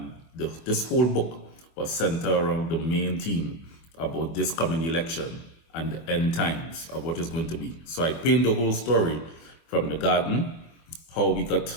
this whole book was centered around the main theme about this coming election and the end times of what is going to be. So I paint the whole story from the garden, how we got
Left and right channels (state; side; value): late; right; 24 ms